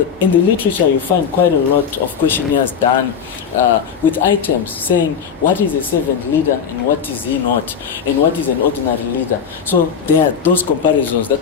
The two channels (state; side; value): quieter; right; 7.0 dB